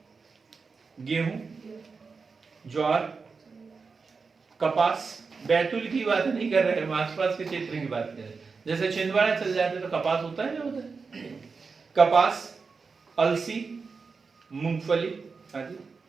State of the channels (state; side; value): quieter; left; 4.8 dB